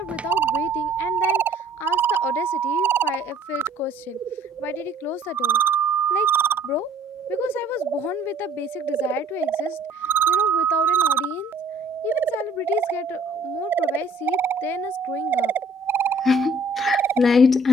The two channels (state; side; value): normal; both; correlation 0.58